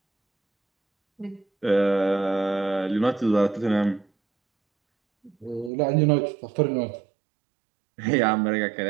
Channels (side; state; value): left; drops out; at 5.7 s